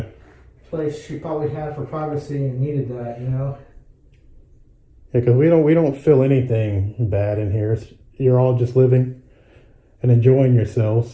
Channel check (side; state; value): both; identical; correlation 1.00